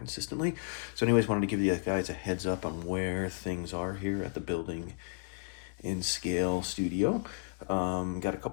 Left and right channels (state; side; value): silent; right; digital silence